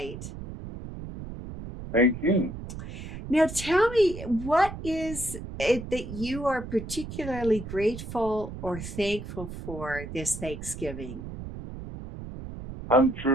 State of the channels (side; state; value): right; noise; rumble, 10 dB below the sound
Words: Thank you. Now, tell me, what is it that you are particularly grateful or thankful for this Thanksgiving? I'm